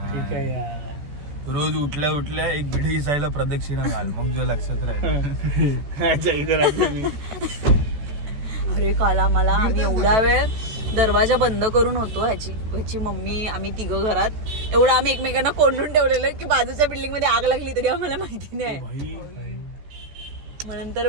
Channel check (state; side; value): late; left; 14 ms